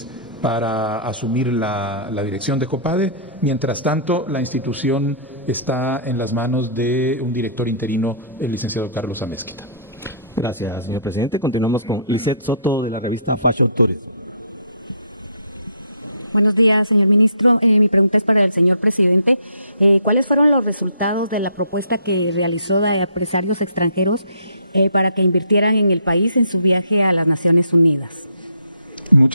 para asumir la dirección de COPADE. Mientras tanto, la institución está en las manos de un director interino, el licenciado Carlos Amezquita. Gracias, señor presidente. Continuamos con Lisette Soto, de la revista Fashion Tourism. Buenos días, señor ministro. Mi pregunta es para el señor presidente. ¿Cuáles fueron los resultados de la propuesta que realizó de empresarios extranjeros para que invirtieran en el país en su viaje a las Naciones Unidas?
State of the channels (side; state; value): both; inverted; correlation -0.57